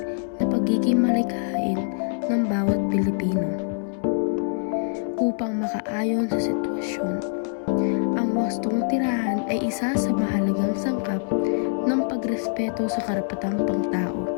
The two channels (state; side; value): silent; right; digital silence